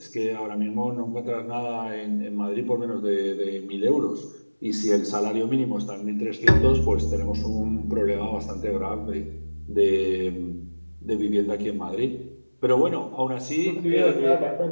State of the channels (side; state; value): both; inverted; correlation -1.00